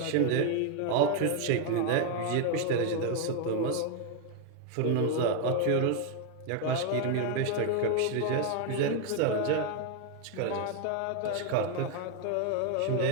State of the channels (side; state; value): both; different; correlation 0.01